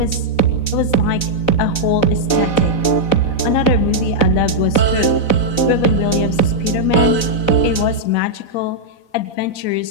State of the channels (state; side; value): late; right; 4.0 ms